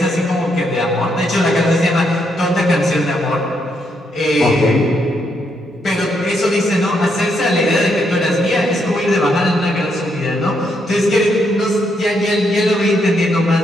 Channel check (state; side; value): normal; both; correlation 0.77